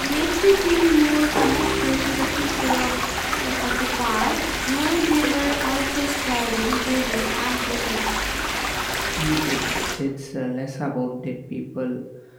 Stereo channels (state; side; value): identical; both; correlation 1.00